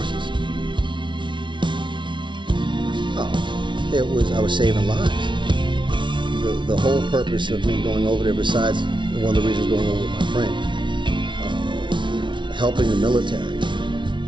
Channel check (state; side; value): late; left; 0.24 ms